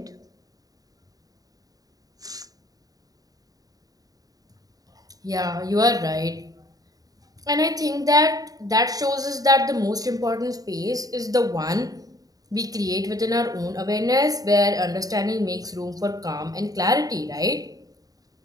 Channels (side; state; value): left; late; 0.18 ms